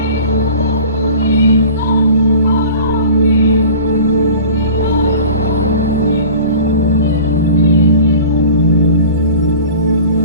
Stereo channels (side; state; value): both; inverted; correlation -0.41